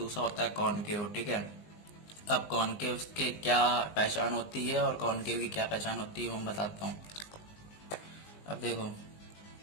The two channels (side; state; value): right; late; 19 ms